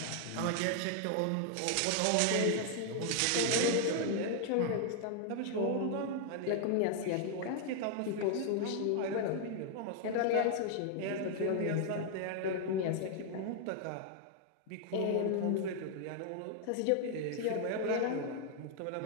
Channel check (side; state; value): both; different; correlation 0.00